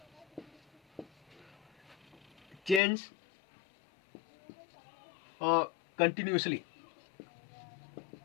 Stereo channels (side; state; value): right; drops out; at 2.8 s